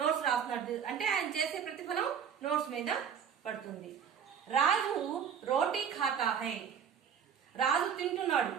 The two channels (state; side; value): quieter; left; 7.8 dB